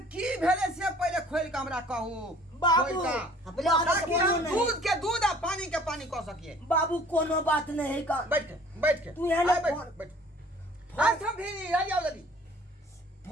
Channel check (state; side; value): normal; both; correlation 0.52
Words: की भेले से पहले खोल के हमरा कहू। बाबू पहले आगे से ताकि बोलो हम नहीं दूध के दूध आ पानी के पानी कह सकिए। बाबू कोनो बात नहीं है का बैठ के तू यहाँ ले बैठ फोन। बैठ हाथ हम भी आ जाओ जल्दी